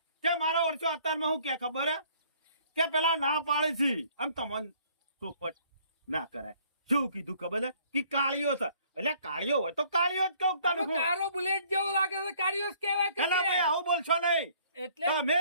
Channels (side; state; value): both; inverted; correlation -0.60